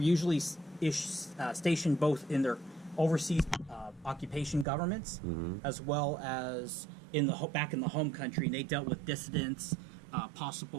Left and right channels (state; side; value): drops out; left; at 4.7 s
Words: usually stationed both in their overseas occupation governments as well as back in the home country. And they dealt with dissidents,